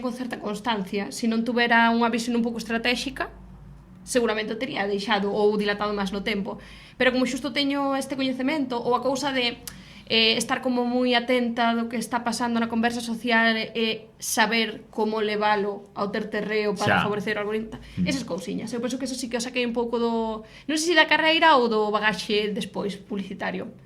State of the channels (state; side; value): identical; both; correlation 1.00